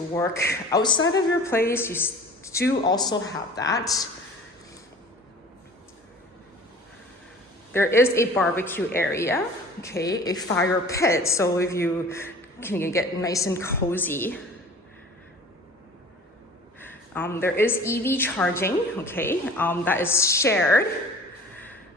work outside of your place, you do also have that. There is a barbecue area, okay, a fire pit, so if you can get nice and cozy. There is EV charging, okay, that is shared.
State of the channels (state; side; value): normal; both; correlation 0.44